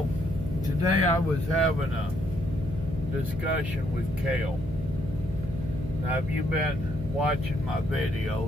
today I was having a discussion with Kale. Now, have you been watching my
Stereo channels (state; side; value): noise; right; hum, 9 dB below the sound